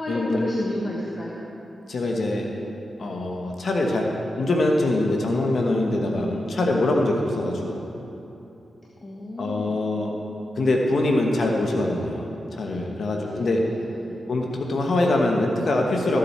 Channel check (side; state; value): both; normal; correlation 0.88